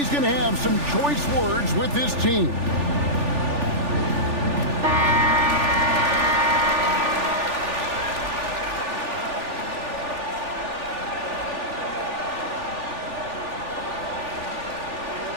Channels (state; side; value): late; left; 3.4 ms